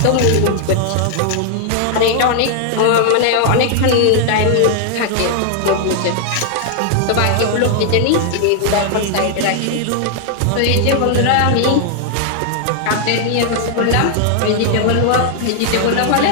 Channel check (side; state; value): both; different; correlation 0.00